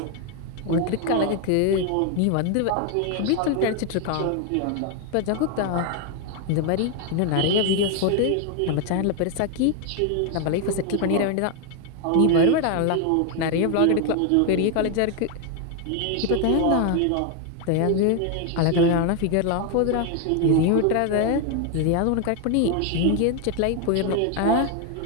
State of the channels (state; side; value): different; both; correlation 0.01